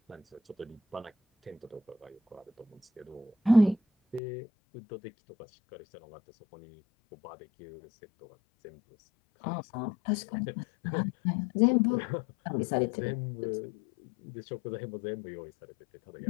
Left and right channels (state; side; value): drops out; right; at 4.2 s